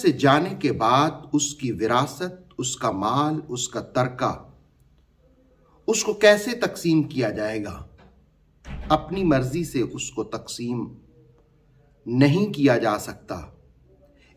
جانے کے بعد اس کی وراثت، اس کا مال، اس کا ترکہ، اس کو کیسے تقسیم کیا جائے گا؟ اپنی مرضی سے اس کو تقسیم نہیں کیا جا سکتا،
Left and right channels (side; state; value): both; identical; correlation 1.00